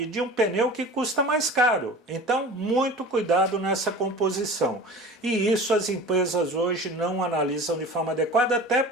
de um pneu que custa mais caro. Então, muito cuidado nessa composição. E isso as empresas hoje não analisam de forma adequada, até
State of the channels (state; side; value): normal; both; correlation 0.38